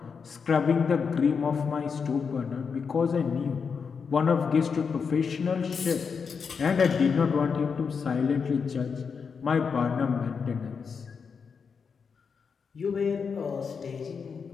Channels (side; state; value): right; quieter; 5.8 dB